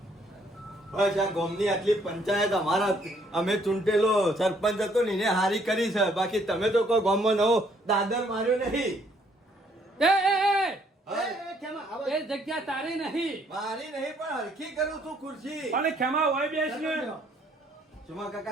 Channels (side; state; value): both; normal; correlation 0.66